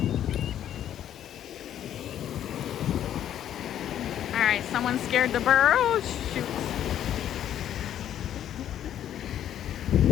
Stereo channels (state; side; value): quieter; right; 10.7 dB